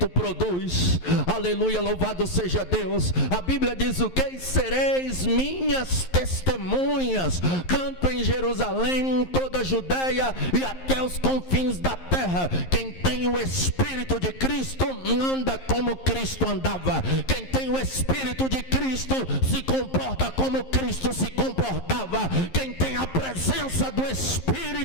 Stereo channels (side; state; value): right; late; 11 ms